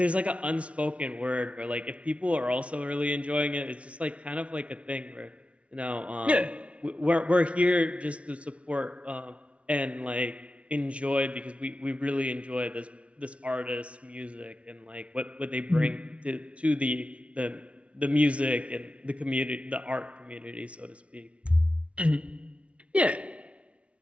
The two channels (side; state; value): left; late; 0.062 ms